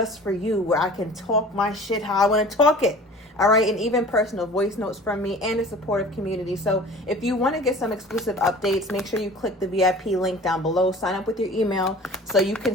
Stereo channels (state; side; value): normal; both; correlation 0.43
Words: for you where I can talk my shit how I want to talk it. All right, and even personal voice notes from me and a supportive community. So if you want to get some exclusive updates, make sure you click the VIP link down below. Sign up with your email so you can